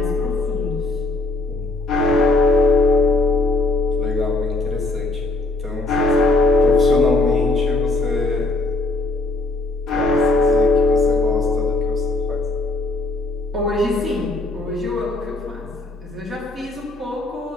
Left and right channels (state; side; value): quieter; right; 3.0 dB